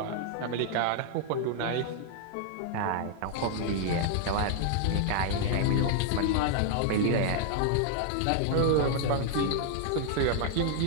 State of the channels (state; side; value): different; both; correlation 0.00